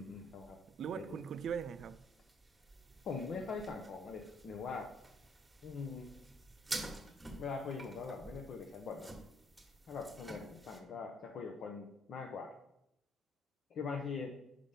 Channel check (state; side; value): normal; both; correlation 0.65